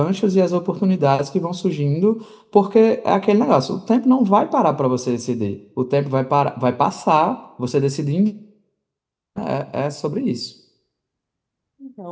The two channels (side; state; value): both; identical; correlation 1.00